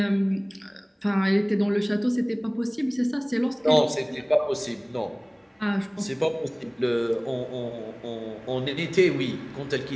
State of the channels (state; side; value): identical; both; correlation 1.00